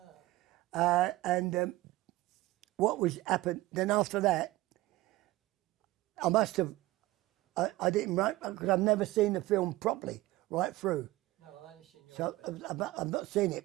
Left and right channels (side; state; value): left; quieter; 17.8 dB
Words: and what was happened, then after that, I must have, I didn't write, because I've never seen the film properly, right through. No, I only seen your So bit. I've not seen